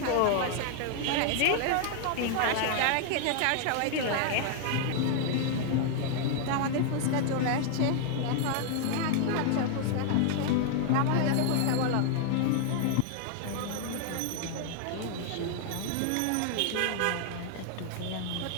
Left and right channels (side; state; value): both; different; correlation 0.00